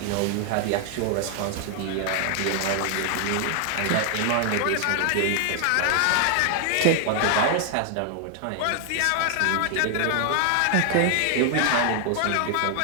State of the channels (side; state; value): both; different; correlation 0.00